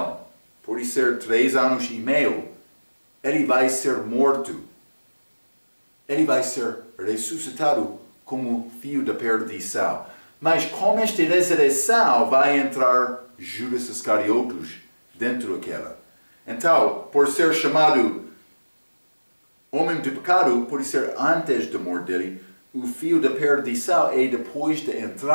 por ser 3 anos e meio, ele vai ser morto. Ele vai ser ressuscitado como filho da perdição. Mas com esta ressurreição vai entrar Judas Iscariotes dentro daquela. Então, por ser chamado homem de pecado, por ser antes da morte dele, o filho da perdição é depois da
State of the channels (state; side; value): inverted; both; correlation -1.00